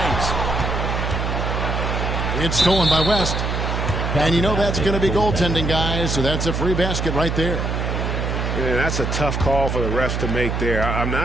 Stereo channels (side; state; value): right; noise; hum, 1 dB below the sound